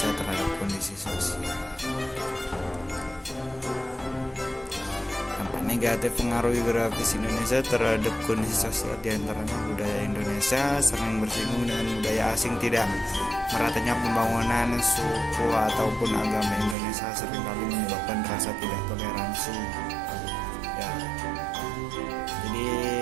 terhadap kondisi sosial. Dampak negatif pengaruh geografis Indonesia terhadap kondisi sosial diantaranya budaya Indonesia sering bersinggungan dengan budaya asing, tidak meratanya pembangunan suku ataupun agama Indonesia seringkali menyebabkan rasa tidak toleransi. Ya, jadi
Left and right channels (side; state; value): left; drops out; at 16.8 s